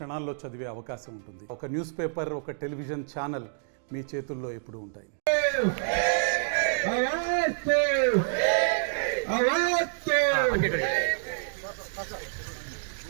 చదివే అవకాశం ఉంటుంది. ఒక న్యూస్ పేపర్, ఒక టెలివిజన్ ఛానల్ మీ చేతుల్లో ఎప్పుడూ ఉంటాయి.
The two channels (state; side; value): silent; left; digital silence